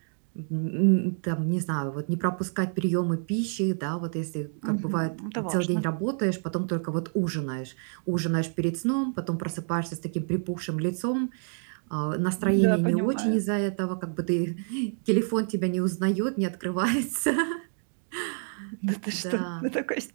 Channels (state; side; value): silent; left; 59 dB below the other